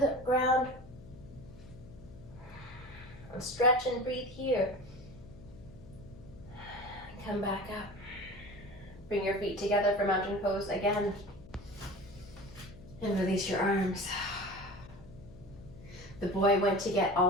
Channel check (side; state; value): left; noise; hum, 18 dB below the sound